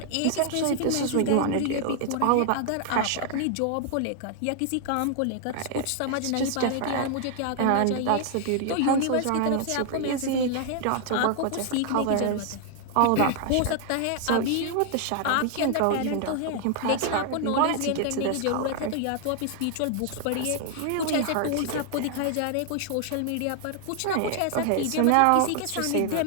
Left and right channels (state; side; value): different; both; correlation 0.00